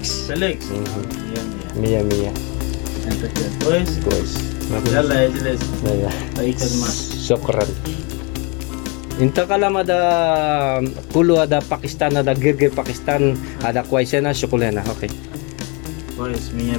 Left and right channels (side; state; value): right; quieter; 31.3 dB